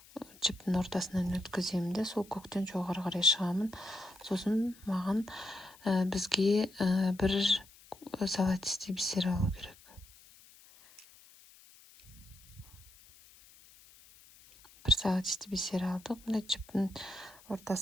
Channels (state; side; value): noise; left; hiss, 24 dB below the sound